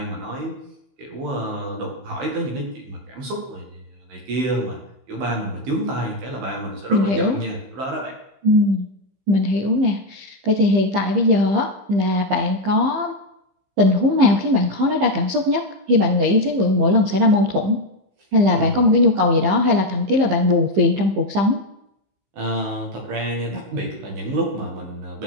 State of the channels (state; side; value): late; left; 15 ms